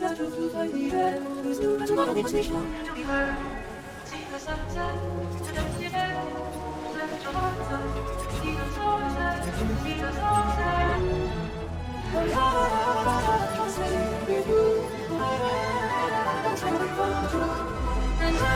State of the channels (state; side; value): identical; both; correlation 1.00